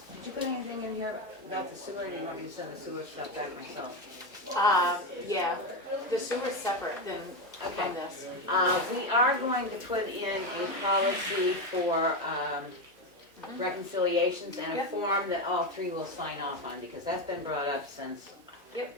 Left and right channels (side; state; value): both; normal; correlation 0.13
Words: did you put anything in here about the sewer, or do you want me to send the sewer stuff back myself? Yeah, the sewer's separate than from this. We are going to put in a policy for, reconciliations, and a form that all three will sign off on, because that's been brought up since